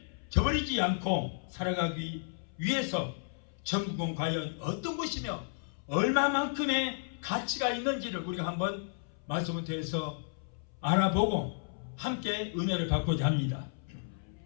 저버리지 않고 살아가기 위해서 천국은 과연 어떤 것이며 얼마만큼의 가치가 있는지를 우리가 한번 말씀을 통해서 알아보고 함께 은혜를 받고자 합니다.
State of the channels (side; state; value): right; silent; 56 dB below the other